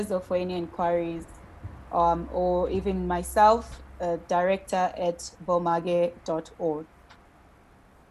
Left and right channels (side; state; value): both; identical; correlation 1.00